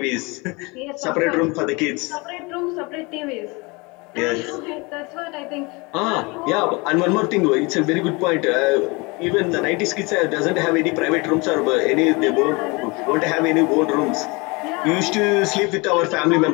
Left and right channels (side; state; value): right; quieter; 26.9 dB